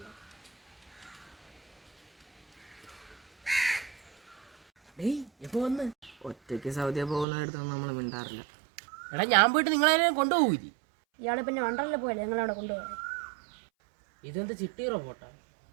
എപ്പോ വന്ന്? ഒറ്റയ്ക്ക് സൗദിയ പോകുന്നിടത്തൊന്നും നമ്മൾ മിണ്ടാറില്ല. എടാ ഞാൻ പോയിട്ട് നിങ്ങളെ കൊണ്ടുപോകൂലി. ഇയാളെ പിന്നെ വണ്ടറിൽ പോയല്ലേ നിങ്ങളവിടെ കൊണ്ടുപോകാൻ. ഇതെന്ത് ചിട്ടി റോബോട്ടാ?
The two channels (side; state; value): left; drops out; at 7.2 s